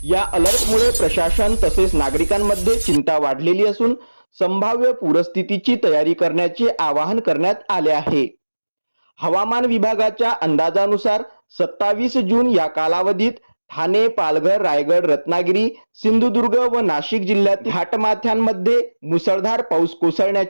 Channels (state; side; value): inverted; both; correlation -1.00